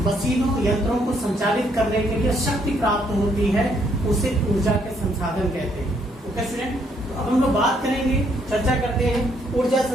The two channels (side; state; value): both; normal; correlation 0.70